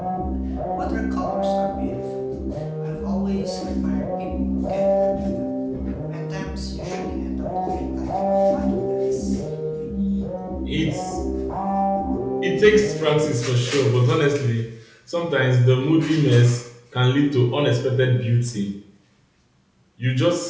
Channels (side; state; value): both; identical; correlation 1.00